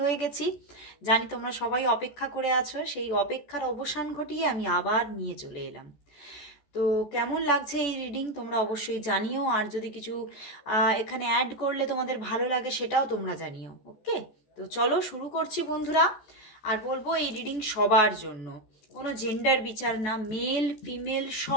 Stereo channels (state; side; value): late; right; 14 ms